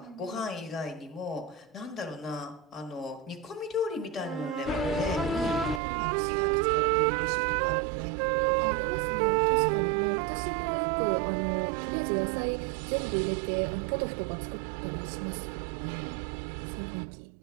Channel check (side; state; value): left; drops out; at 5.8 s